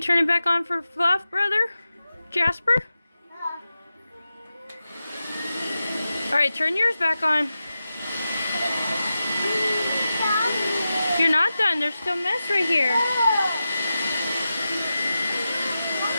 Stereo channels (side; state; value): both; inverted; correlation -0.92